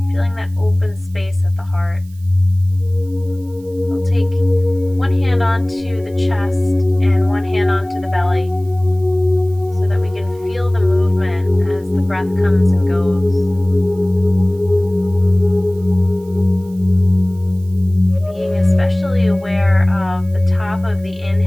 feeling that open space at the heart. We'll take one hand onto the chest and one hand onto the belly so that we can feel the movement as the breath comes and goes. Being especially aware of the top of the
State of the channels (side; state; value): right; noise; hiss, 28 dB below the sound